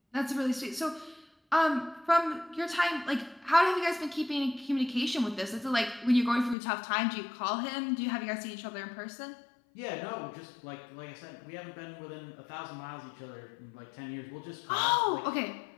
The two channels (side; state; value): right; drops out; at 6.6 s